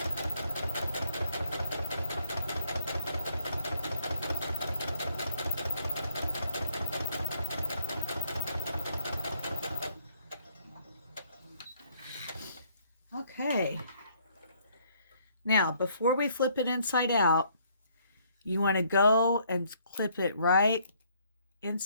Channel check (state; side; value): inverted; both; correlation -0.66